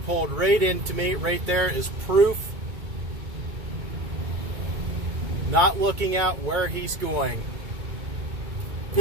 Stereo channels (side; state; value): left; late; 2.2 ms